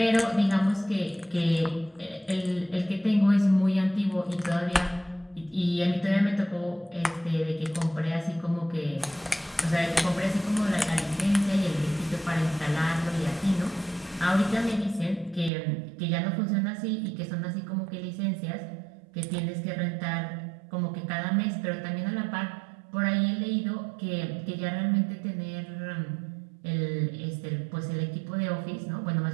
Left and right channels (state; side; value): drops out; left; at 15.5 s